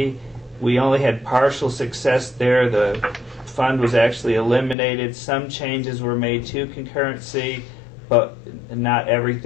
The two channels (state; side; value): drops out; right; at 4.8 s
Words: We only had partial success there. The fund was actually eliminated. Some changes were made to concurrency, but not